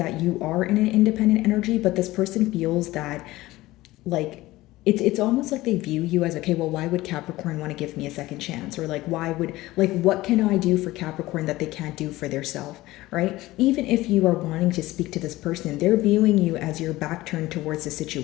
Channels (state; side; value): quieter; right; 18.0 dB